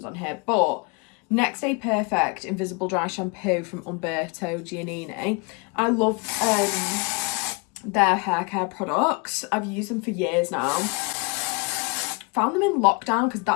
on here, but Next Day Perfect Invisible Dry Shampoo from Umberto Giannini. I love their hair care products. I've used them for years now. Found them in lockdown because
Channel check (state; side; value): quieter; right; 30.7 dB